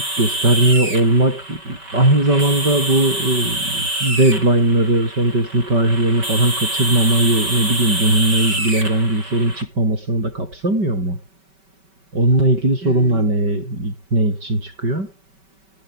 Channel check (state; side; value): late; left; 5.2 ms